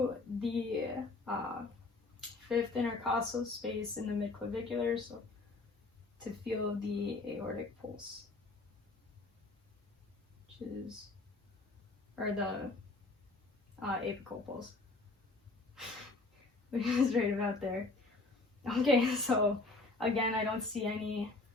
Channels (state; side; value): quieter; right; 3.4 dB